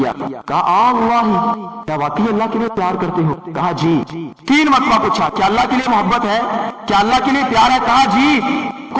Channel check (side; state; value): both; identical; correlation 1.00